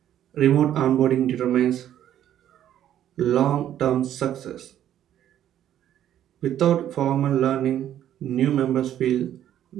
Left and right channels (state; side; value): quieter; left; 11.1 dB